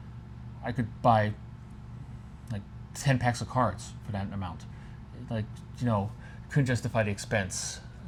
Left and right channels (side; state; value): both; identical; correlation 1.00